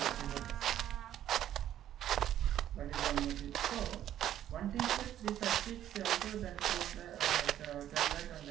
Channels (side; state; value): left; quieter; 11.5 dB